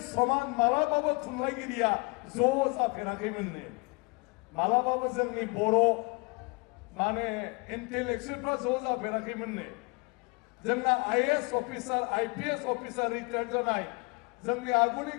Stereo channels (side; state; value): right; quieter; 28.8 dB